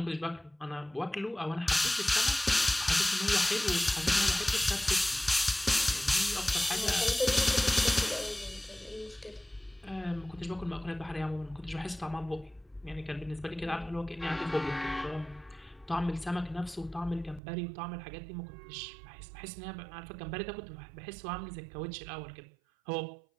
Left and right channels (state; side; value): drops out; left; at 17.4 s